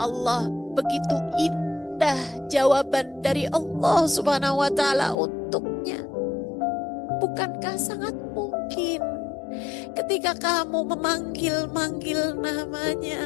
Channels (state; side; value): drops out; right; at 5.2 s